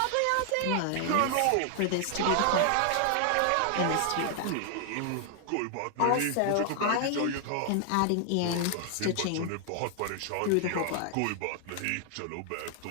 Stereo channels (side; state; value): both; different; correlation 0.00